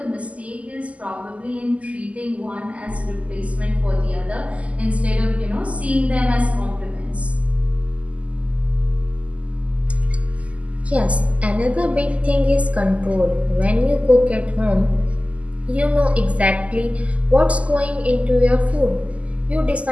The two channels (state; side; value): late; left; 0.067 ms